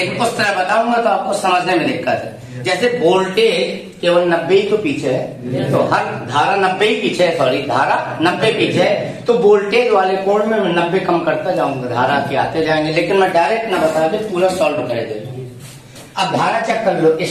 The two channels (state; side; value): identical; both; correlation 1.00